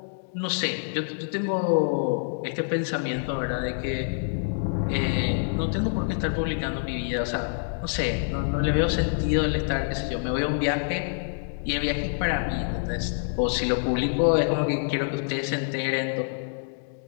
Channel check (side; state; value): right; silent; digital silence